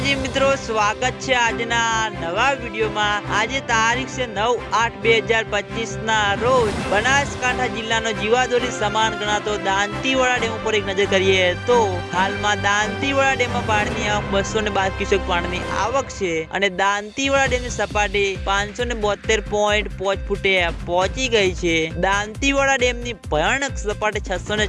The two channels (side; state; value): both; identical; correlation 1.00